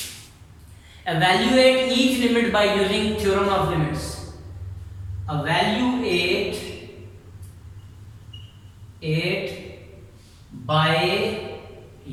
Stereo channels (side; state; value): both; identical; correlation 1.00